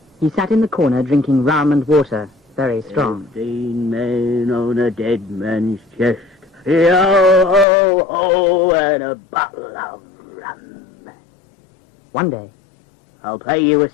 he sat in the corner drinking rum and water, very strong. 15 men on a dead man's chest. Yo-ho-ho, and a bottle of rum. One day, I'll pay you a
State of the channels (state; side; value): drops out; right; at 7.7 s